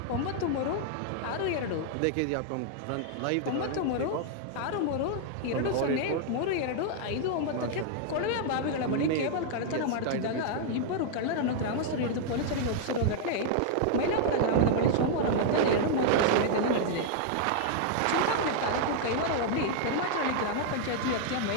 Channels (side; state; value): both; different; correlation 0.00